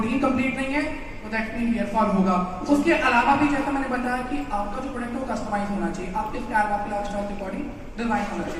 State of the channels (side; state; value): both; identical; correlation 1.00